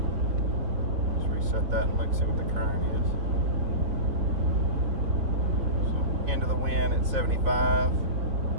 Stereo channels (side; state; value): left; late; 4.2 ms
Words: start that and look, see what the current is. So end of the wind at 75.